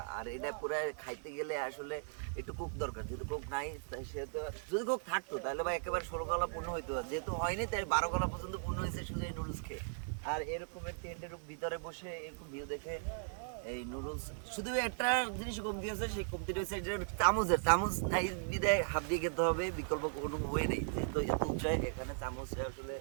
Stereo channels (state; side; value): silent; left; 53 dB below the other